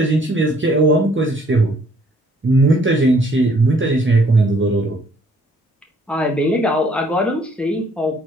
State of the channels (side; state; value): both; normal; correlation 0.62